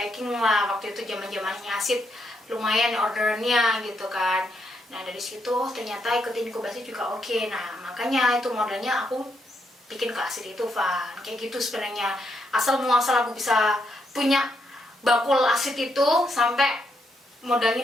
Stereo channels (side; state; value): both; normal; correlation 0.78